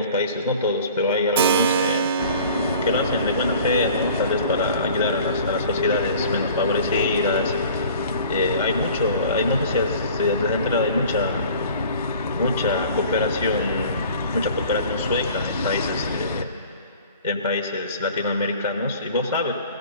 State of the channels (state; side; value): inverted; both; correlation -0.47